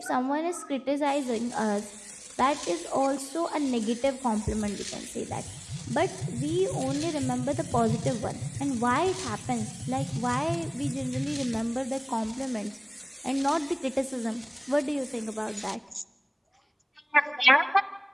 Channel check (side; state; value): both; identical; correlation 1.00